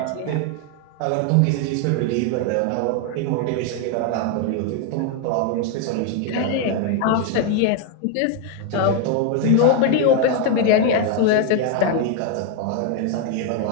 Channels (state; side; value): different; both; correlation 0.01